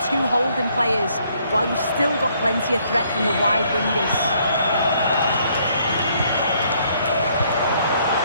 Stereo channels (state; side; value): inverted; both; correlation -0.67